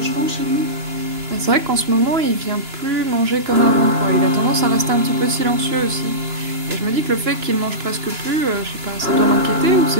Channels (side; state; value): left; late; 2.9 ms